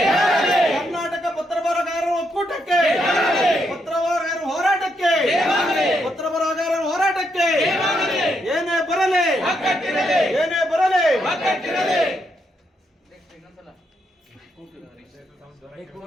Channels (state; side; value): normal; both; correlation 0.79